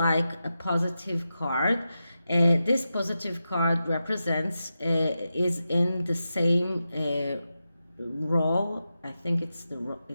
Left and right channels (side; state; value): both; inverted; correlation -0.90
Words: a positive card. This positive card represents, is in the same row. I think it's the